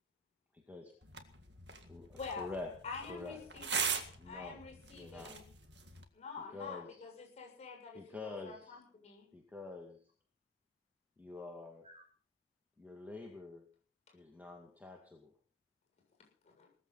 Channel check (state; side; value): normal; both; correlation 0.09